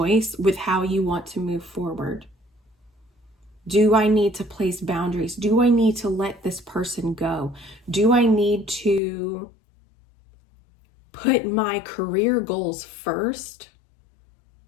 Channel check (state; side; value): drops out; right; at 9.0 s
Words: with how you want to move forward. Do I need to place boundaries? Do I need to let this person go? Do I need to put my career goals first